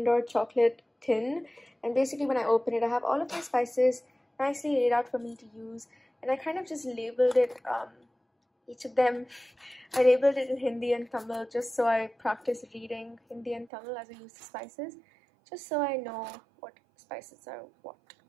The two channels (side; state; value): left; drops out; at 13.7 s